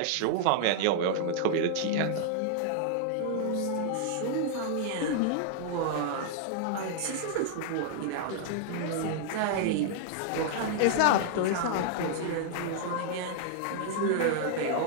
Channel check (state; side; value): different; both; correlation -0.01